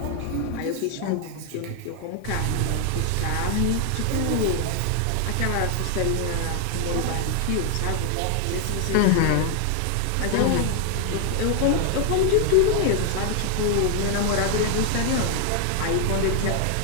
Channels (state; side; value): different; both; correlation 0.00